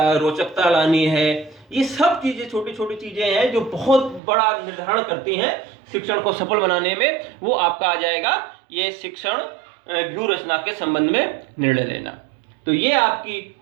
रोचकता लानी है। ये सब चीजें छोटी छोटी चीजें हैं जो बहुत बड़ा निर्धारण करती हैं शिक्षण को सफल बनाने में। वो आपका आ जाएगा ये शिक्षण व्यूह रचना के संबंध में निर्णय लेना। तो ये आपकी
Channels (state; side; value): drops out; left; at 4.2 s